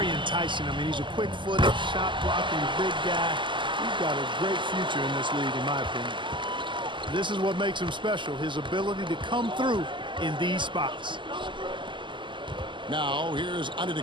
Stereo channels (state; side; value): late; left; 0.24 ms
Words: enticing. I mean, he's a quick-footed, shot-blocking big guy. He's got a great future in this league, in my opinion. This is what makes him special, his ability to come through in these spots. Now, here's